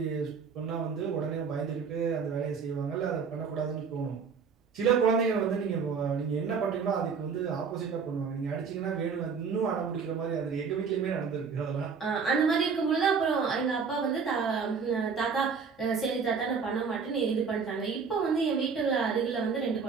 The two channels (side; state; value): left; quieter; 5.7 dB